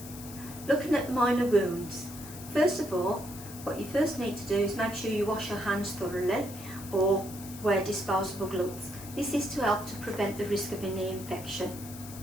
Looking at minor wounds. First of all, what you first need to do is make sure you wash your hands thoroughly or wear disposable gloves. This is to help to prevent the risk of any infection.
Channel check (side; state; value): left; noise; hiss, 14 dB below the sound